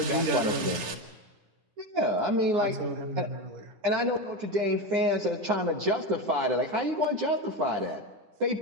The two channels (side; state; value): left; late; 9.9 ms